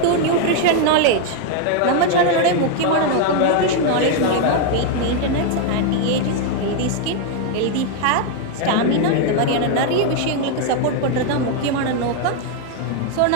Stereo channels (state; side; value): different; both; correlation 0.01